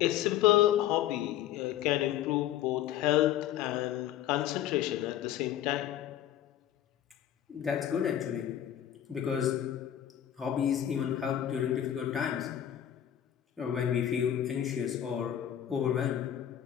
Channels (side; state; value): right; quieter; 11.2 dB